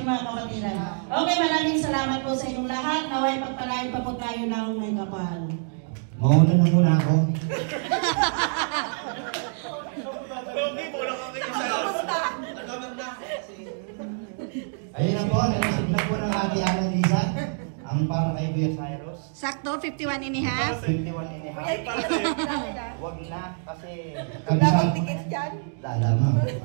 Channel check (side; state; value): left; silent; 61 dB below the other